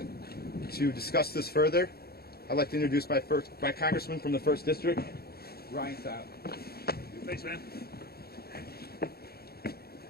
To discuss this further, I'd like to introduce my congressman from the 1st District, Ryan Halt. Thanks, man.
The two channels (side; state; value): right; late; 0.45 ms